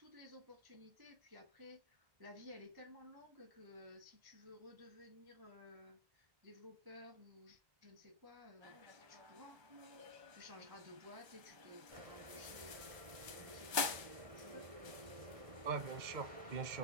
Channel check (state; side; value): late; left; 1.3 ms